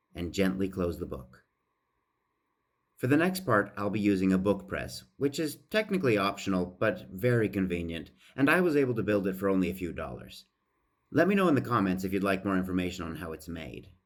and gently close the book. For the next part, I'll be using a book press, which is technically optional but very convenient, and I was able to build it for only a few dollars. Let me know in the comments if you'd like more information on how it's made.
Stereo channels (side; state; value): both; identical; correlation 1.00